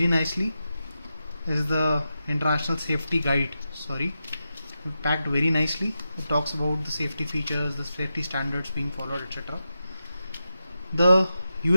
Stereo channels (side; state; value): both; inverted; correlation -0.89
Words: nicely. This is the international safety guide. Packed very nicely. It talks about the safety features, the safety standards being followed, etc. The